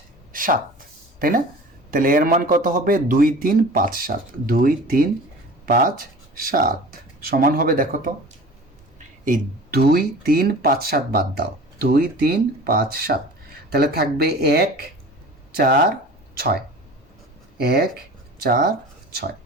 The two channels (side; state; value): both; normal; correlation 0.40